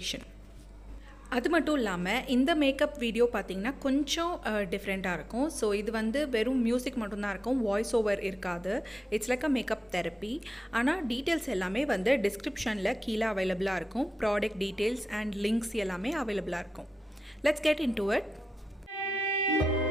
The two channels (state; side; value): normal; both; correlation 0.92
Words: அது மட்டும் இல்லாமல் இந்த மேக்கப் வீடியோ பார்த்திங்கன்னா கொஞ்சம் டிஃப்ரெண்ட்டாக இருக்கும். ஸோ இது வெறும் மியூசிக் மட்டும்தான் இருக்கும், வாய்ஸ் ஓவர் இருக்காது. It's like a makeup therapy. ஆனால் டீட்டெயில்ஸ் எல்லாமே டிஸ்கிரிப்ஷனில் கீழே அவைலபிளாக இருக்கும். ப்ராடக்ட் டீட்டெயில்ஸ் அண்ட் லிங்க்ஸ் எல்லாமே அவைலபிளாக இருக்கும். Let's get into it.